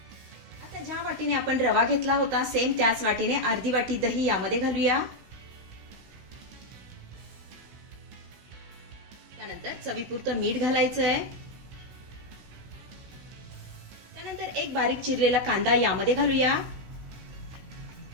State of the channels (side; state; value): left; late; 16 ms